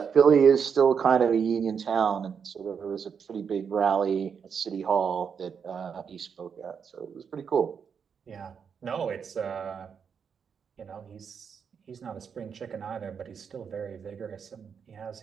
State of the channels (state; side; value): quieter; left; 6.8 dB